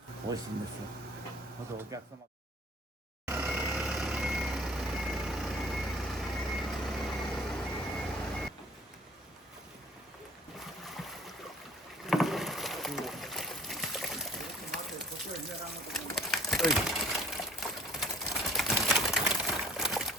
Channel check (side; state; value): both; normal; correlation 0.52